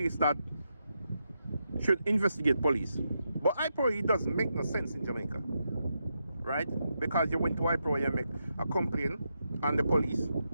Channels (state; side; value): inverted; both; correlation -0.84